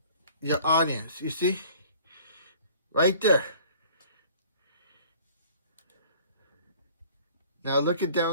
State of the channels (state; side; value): inverted; both; correlation -0.51